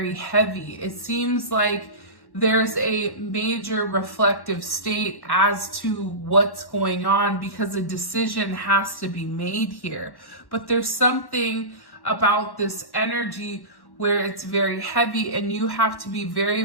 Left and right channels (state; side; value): late; right; 1.1 ms